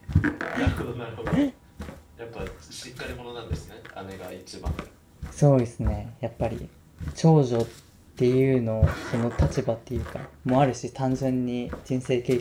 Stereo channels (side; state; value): both; identical; correlation 1.00